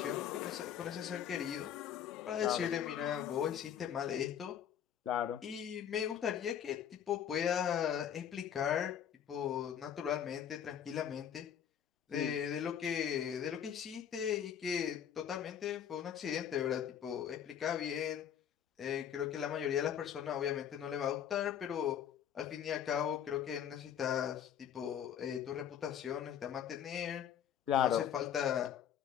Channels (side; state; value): right; quieter; 9.2 dB